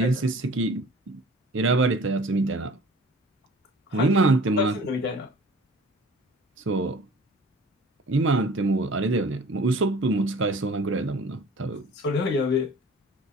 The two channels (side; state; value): both; normal; correlation 0.46